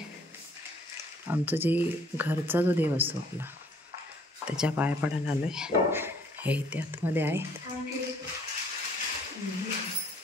आमचं जे घरचा जो देव असतो आपला, त्याच्या पाया पडायला आलोय। हे इथे आतमध्ये आहेत।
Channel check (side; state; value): both; normal; correlation 0.61